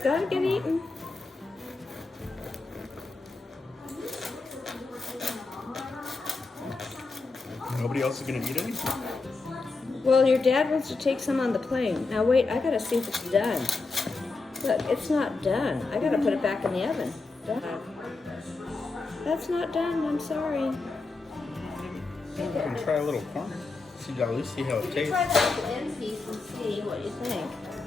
get eaten. Nobody else is gonna eat it? Well, your dad wants to take some on the plane. Now wait, I gotta see if it's done. Look, it's not done. I gotta put it back in the oven. Done. That's not done, I'm sorry. I can try a little corn. See, at least see how it tastes. Try that with the end piece and see what you think.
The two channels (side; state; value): right; quieter; 3.8 dB